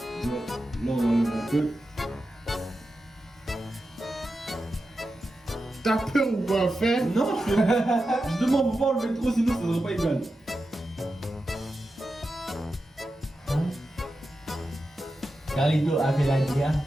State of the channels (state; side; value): normal; both; correlation 0.91